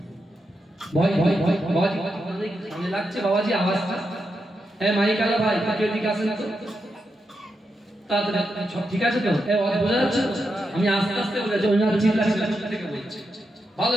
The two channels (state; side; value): normal; both; correlation 0.86